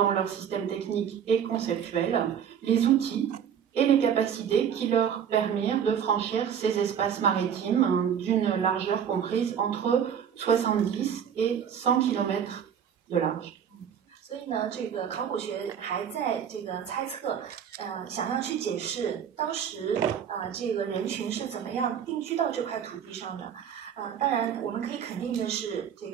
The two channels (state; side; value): quieter; left; 8.3 dB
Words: leur système technique et conceptuel les outils et les capacités qui leur permirent de franchir ces espaces maritimes d'une largeur comprise entre 70 et 100 km de large. 所以呢，这个考古学还在这个猜测，想要去解释当时这个人群是怎么样定居到这块土地上的。当然，我们可以肯定的是，这